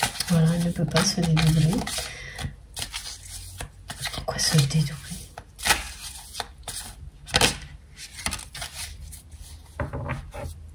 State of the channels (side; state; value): both; identical; correlation 1.00